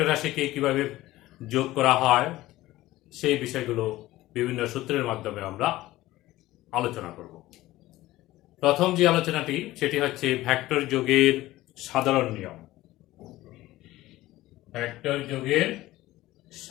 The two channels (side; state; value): right; quieter; 16.8 dB